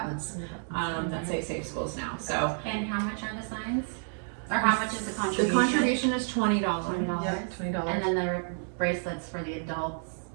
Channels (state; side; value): silent; left; 57 dB below the other